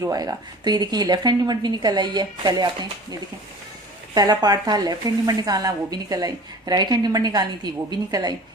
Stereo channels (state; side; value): normal; both; correlation 0.42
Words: आएगा। तो ये देखिए लेफ्ट हैंड लिमिट भी निकल आई है। पहले आपने ये देखें, पहला पार्ट था लेफ्ट हैंड लिमिट निकालना, वो भी निकल आई, राइट हैंड लिमिट निकालनी थी, वो भी निकल आई।